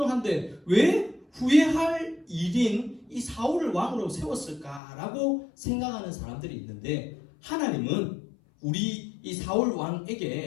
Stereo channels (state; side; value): drops out; right; at 4.8 s